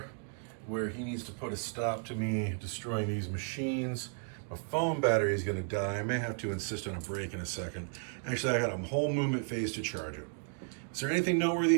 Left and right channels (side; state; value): left; silent; 55 dB below the other